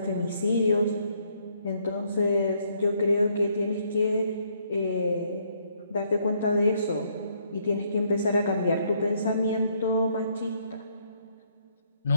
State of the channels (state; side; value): inverted; both; correlation -0.70